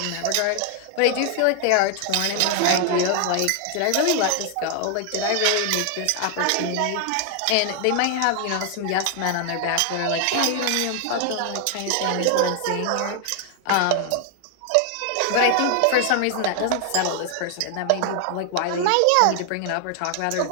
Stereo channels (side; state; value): both; different; correlation 0.00